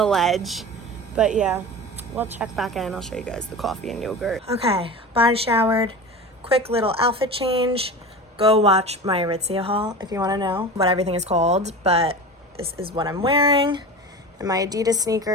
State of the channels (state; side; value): normal; both; correlation 0.31